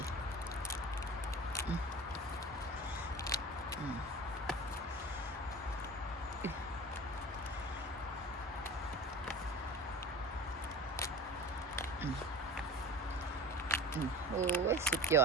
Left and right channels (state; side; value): normal; both; correlation 0.37